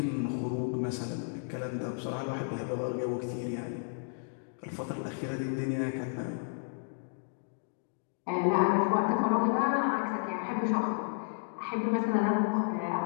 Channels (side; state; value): right; silent; digital silence